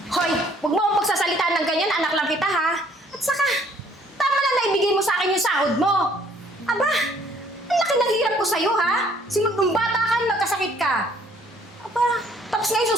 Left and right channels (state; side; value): normal; both; correlation 0.61